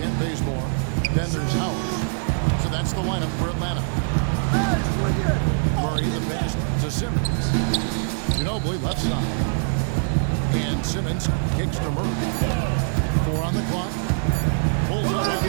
Bazemore. Then there's Howard. So that's the lineup for Atlanta. Murray the pass to Simmons. Ginobili left side. And Simmons kicks to Murray. 4 on the clock. Pulls up on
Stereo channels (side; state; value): left; silent; 63 dB below the other